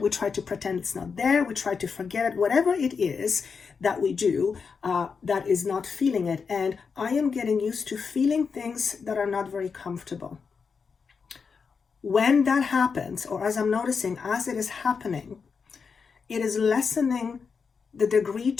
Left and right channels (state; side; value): quieter; right; 5.6 dB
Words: try to pretend it's not there. We try to forget it. Whatever it is that we do that is not feeling it. And I am getting used to feeling things that are not very comfortable. When that happens, or as I'm noticing, as it is happening, it is lessening the degree